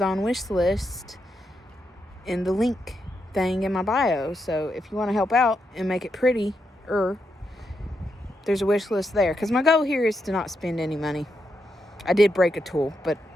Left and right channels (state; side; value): normal; both; correlation 0.83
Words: wish list in the link thing in my bio. So if you want to help out and make it pretty, there's a wish list there. Because my goal here is to not spend any money. I did break a tool, but